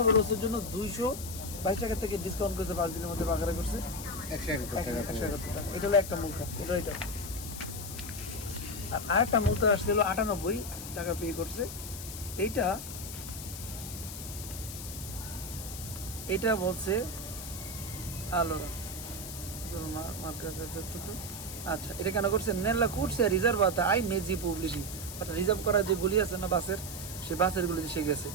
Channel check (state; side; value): noise; left; hiss, 9 dB below the sound